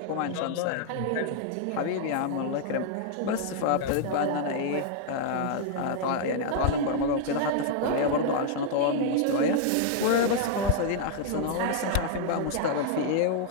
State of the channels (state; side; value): different; both; correlation -0.01